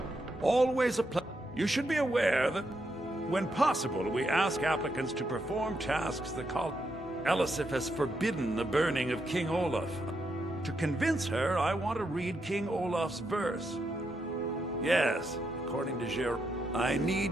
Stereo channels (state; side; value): normal; both; correlation 0.81